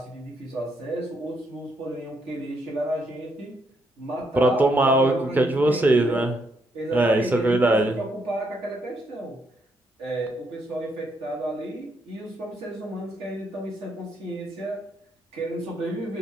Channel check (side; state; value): both; normal; correlation 0.75